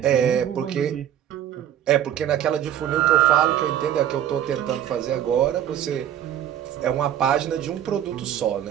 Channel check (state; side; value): quieter; left; 10.5 dB